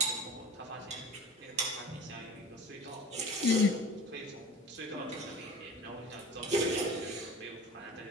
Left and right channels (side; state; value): both; normal; correlation 0.38